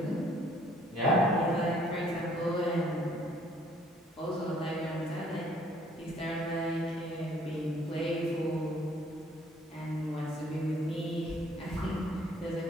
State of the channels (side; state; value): both; normal; correlation 0.61